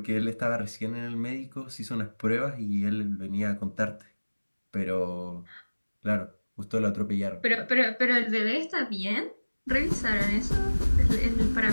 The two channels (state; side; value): inverted; both; correlation -1.00